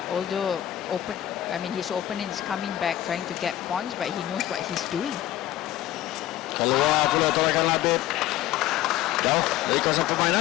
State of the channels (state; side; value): quieter; right; 13.3 dB